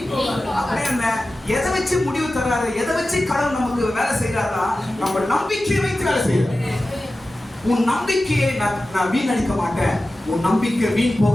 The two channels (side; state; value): both; normal; correlation 0.95